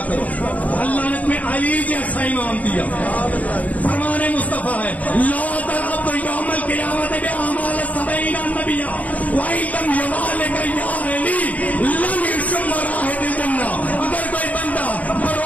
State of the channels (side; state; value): right; late; 0.072 ms